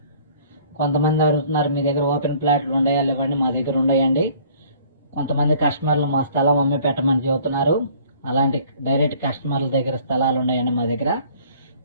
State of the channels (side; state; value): both; inverted; correlation -0.55